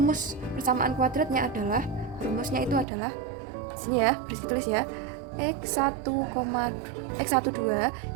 persamaan kuadratnya adalah, rumusnya itu adalah sini ya, tulis ya. X12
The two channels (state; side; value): drops out; left; at 2.9 s